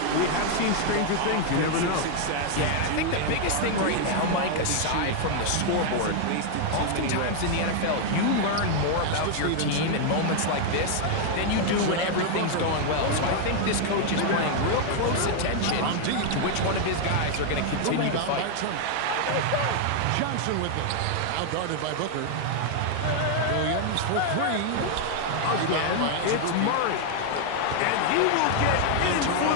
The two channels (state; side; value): different; both; correlation 0.00